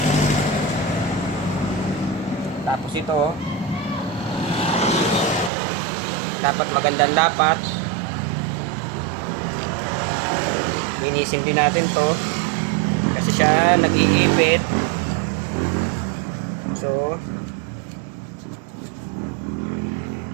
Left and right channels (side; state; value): left; drops out; at 5.5 s